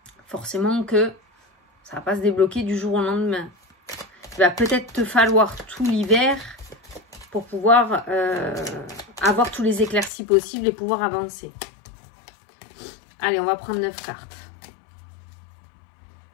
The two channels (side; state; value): right; drops out; at 10.1 s